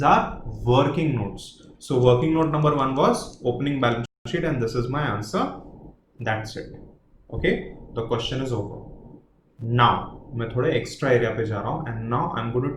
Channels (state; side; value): identical; both; correlation 1.00